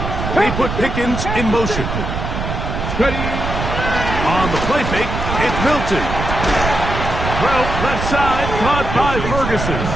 They put Pickens in motion. Ready. On the play fake, it's Milton. Throw left side, caught by Ferguson.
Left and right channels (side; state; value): right; noise; rumble, 4 dB below the sound